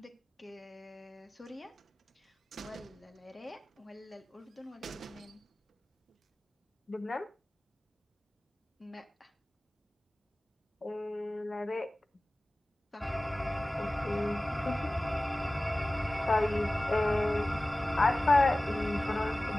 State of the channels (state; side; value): normal; both; correlation 0.97